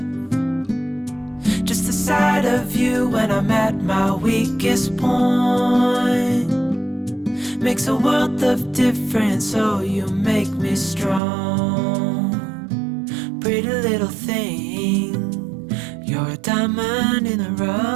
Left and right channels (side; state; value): left; drops out; at 11.2 s